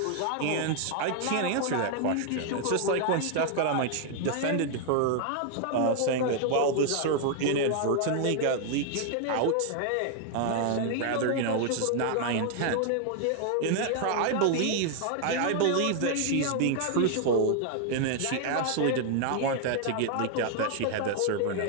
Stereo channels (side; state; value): both; different; correlation 0.00